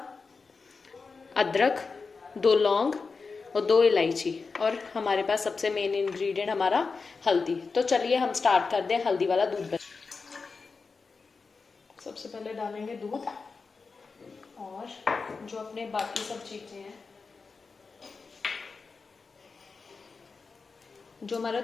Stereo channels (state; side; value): quieter; right; 4.6 dB